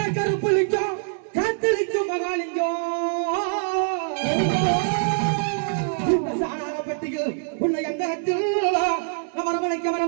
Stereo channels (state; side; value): silent; left; digital silence